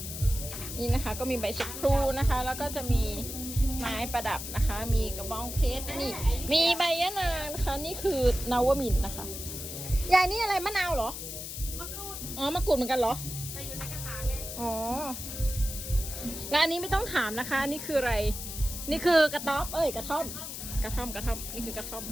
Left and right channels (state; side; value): noise; left; hiss, 8 dB below the sound